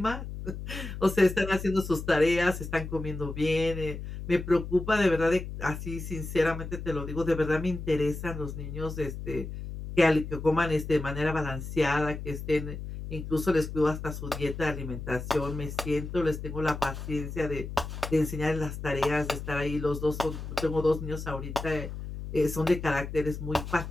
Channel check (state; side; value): noise; left; hum, 8 dB below the sound